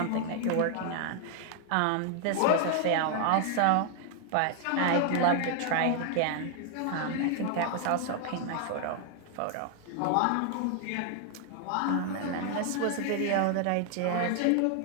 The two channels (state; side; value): different; both; correlation 0.00